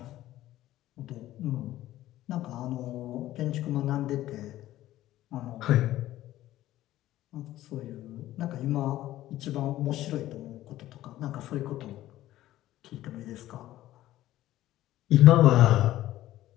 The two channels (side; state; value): right; quieter; 14.6 dB